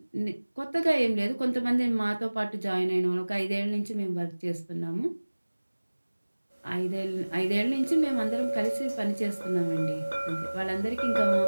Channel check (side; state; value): both; inverted; correlation -1.00